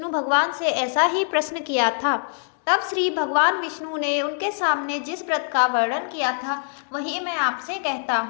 भगवान से ऐसा ही प्रश्न किया था। तब श्री भगवान विष्णु ने उनके सामने जिस व्रत का वर्णन किया था, वही मैं आपसे कहता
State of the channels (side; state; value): right; silent; digital silence